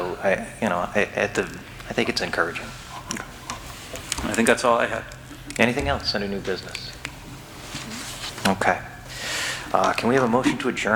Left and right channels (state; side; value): identical; both; correlation 1.00